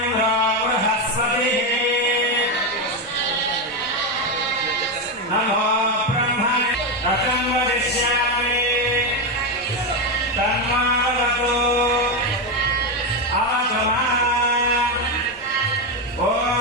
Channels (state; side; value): normal; both; correlation 0.09